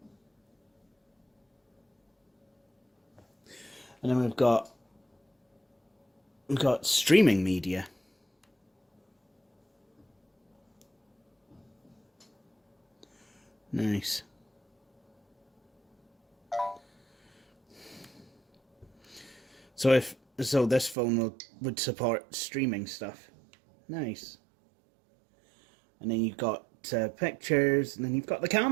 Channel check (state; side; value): drops out; left; at 21.0 s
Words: And then we've got streaming media. Nice. So this phone would support streaming stuff. Nice. And then you've got pictures, and then you've got the